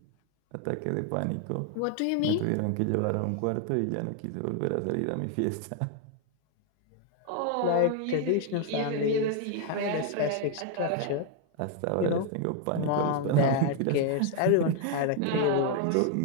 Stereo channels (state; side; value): different; both; correlation 0.00